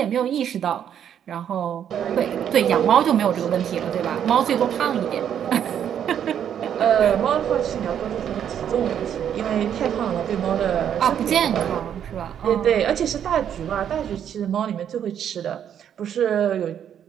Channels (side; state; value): left; quieter; 9.2 dB